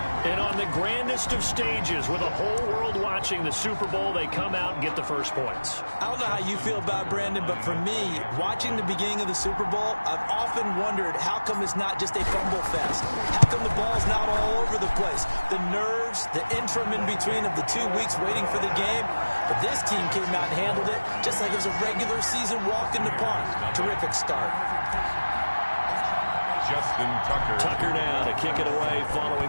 And on the grandest of stages, with the whole world watching the Super Bowl, they come out and get the first points. I don't know how you feel about Brandon, but for me, watching the beginning of the Super Bowl, I've often wondered how come it's not just a fumble fest? How come the ball's not all over the place? The nerves, the interim in between of the 2 weeks waiting for the game. But this team came out and handled it just like it was a regular season walk in the park. Terrific start. Justin Tucker. Tucker now to kick it away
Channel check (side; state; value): both; inverted; correlation -1.00